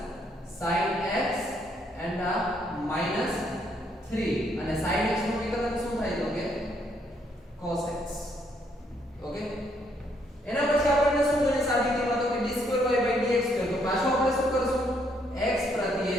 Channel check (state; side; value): normal; both; correlation 0.71